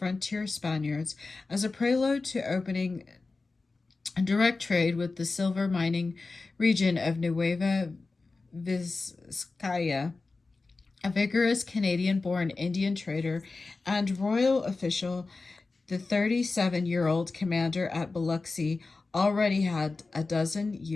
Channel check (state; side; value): quieter; right; 3.7 dB